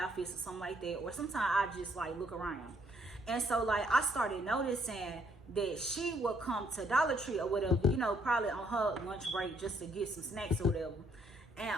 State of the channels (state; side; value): normal; both; correlation 0.68